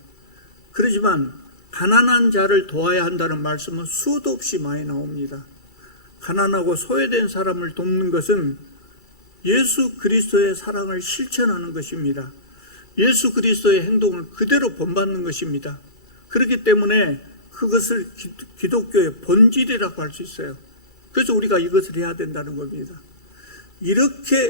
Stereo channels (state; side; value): late; right; 2.3 ms